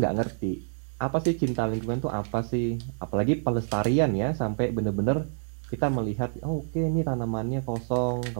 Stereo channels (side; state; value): left; silent; digital silence